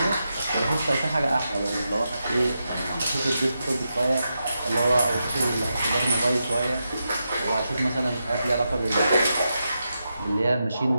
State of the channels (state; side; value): inverted; both; correlation -0.87